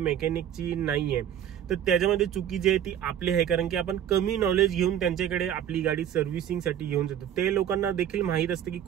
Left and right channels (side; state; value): left; quieter; 10.0 dB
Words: नाहीये. तर त्याच्यामध्ये चुकी जी आहे ती आपली आहे, कारण की आपण कमी नॉलेज घेऊन त्यांच्याकडे आपली गाडी सर्व्हिसिंगसाठी घेऊन जातो. ते लोकांना देखील माहित असतं की